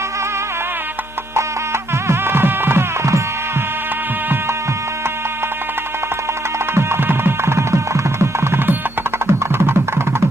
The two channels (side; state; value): both; normal; correlation 0.74